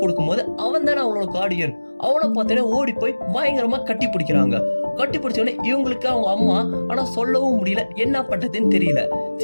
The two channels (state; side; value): inverted; both; correlation -1.00